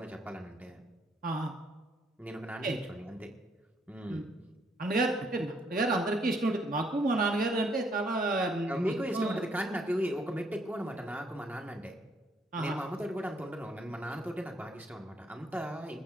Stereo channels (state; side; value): normal; both; correlation 0.69